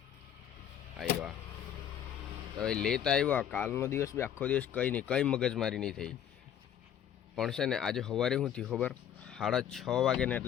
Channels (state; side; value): quieter; right; 9.6 dB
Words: આવ્યા તો ભાઈ લેતા આવ્યા। કાલનો દિવસ બી આખો દિવસ કંઈ નહીં, કંઈ મગજમારી નહીં થઈ। પણ છે ને આજે સવારે શું થયું ખબર, 6:30 વાગે ને